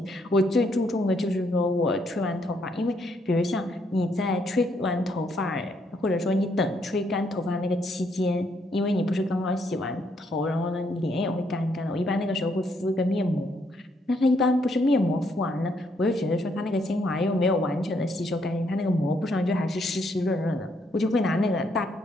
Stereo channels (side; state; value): both; normal; correlation 0.73